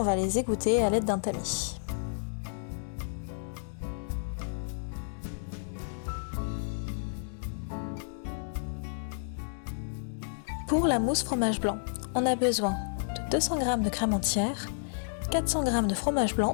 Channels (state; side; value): silent; right; digital silence